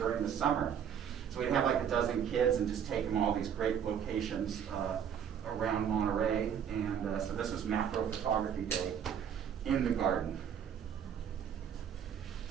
the summer. So we'd have like a dozen kids and just take them all these great locations around Monterey. And so this was macro photography day in the garden.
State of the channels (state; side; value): quieter; left; 8.3 dB